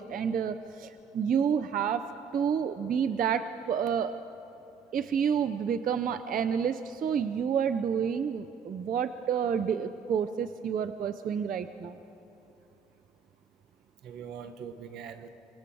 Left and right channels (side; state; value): left; quieter; 7.1 dB